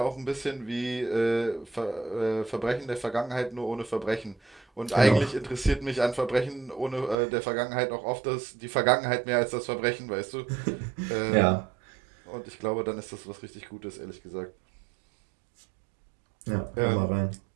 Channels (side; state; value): left; drops out; at 7.2 s